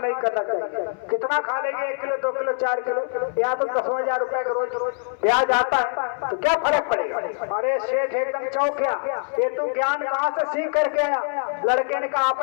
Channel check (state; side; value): silent; right; 63 dB below the other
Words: नहीं करना चाहिए, कितना खा लेंगे, 1 किलो 2 किलो 4 किलो, यहाँ तो 10,000 रुपए का रोज ब्याज आता है, तो क्या फर्क पड़ेगा। अरे शेठ एकदम चौंक गया, ये तू ज्ञान कहाँ से सीख करके आया। लड़के ने कहा,